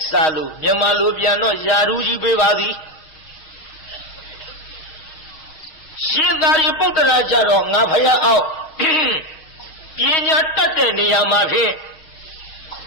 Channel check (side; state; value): right; late; 6.4 ms